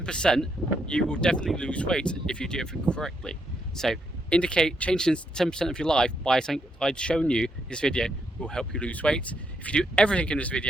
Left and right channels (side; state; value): both; normal; correlation 0.77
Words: you will definitely lose weight if you do everything correctly. So changing 10% of your life by something I'd shown you this video will help you lose weight. If you do everything in this